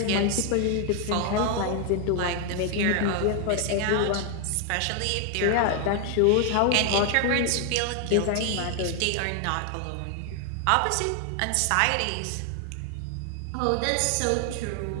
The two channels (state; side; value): different; both; correlation 0.00